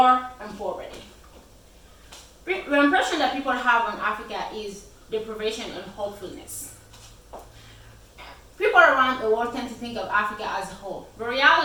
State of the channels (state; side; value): identical; both; correlation 1.00